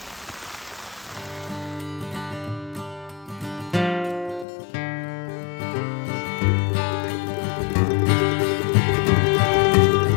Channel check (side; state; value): right; drops out; at 4.5 s